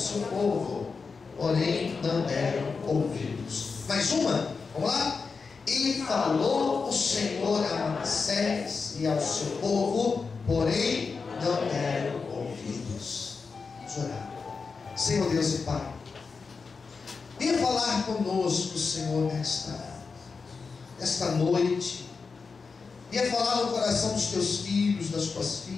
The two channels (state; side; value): quieter; right; 4.9 dB